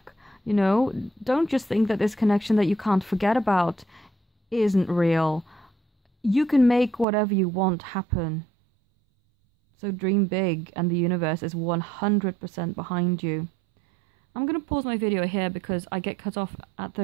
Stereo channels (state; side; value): drops out; left; at 7.1 s